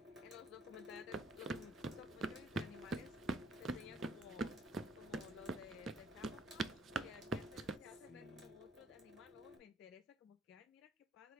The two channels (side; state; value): both; normal; correlation 0.63